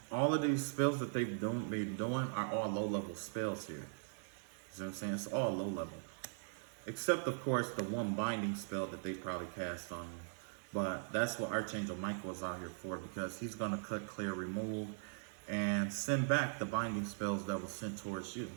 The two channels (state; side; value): silent; left; digital silence